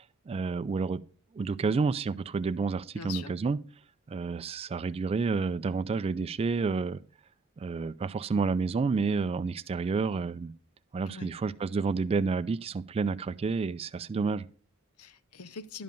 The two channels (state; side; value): quieter; left; 4.1 dB